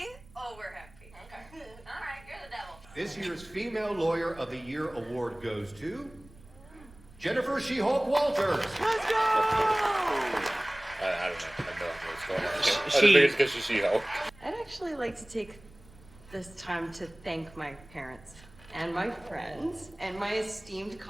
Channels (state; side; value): noise; right; rumble, 23 dB below the sound